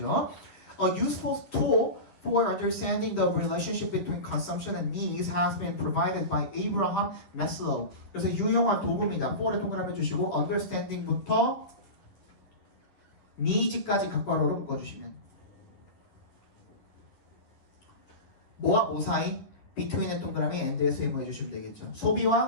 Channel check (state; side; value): late; right; 11 ms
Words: A useful tool for understanding the relationship between consumption and needs has been provided by Abraham Maslow. 그래서 유용한 도구입니다. for에 동그라미 해주시고 understanding부터 needs까지 각괄호로 묶어주시면 뭐와 뭐 사이? between의 동그라미 and에서 해석해 주시면 되겠죠.